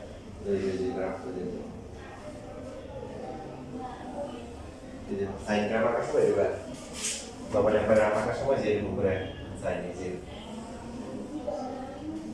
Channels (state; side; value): identical; both; correlation 1.00